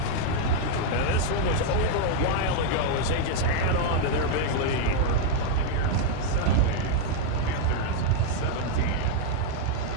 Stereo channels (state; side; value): different; both; correlation 0.00